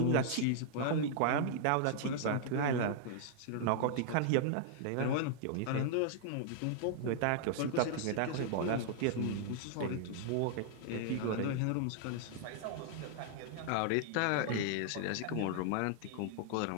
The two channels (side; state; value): both; different; correlation -0.01